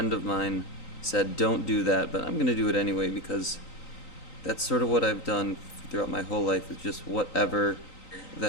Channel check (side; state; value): right; late; 3.9 ms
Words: of mine said don't do that, but I'm going to do it anyway because that's sort of what I've done throughout my whole life, is just whatever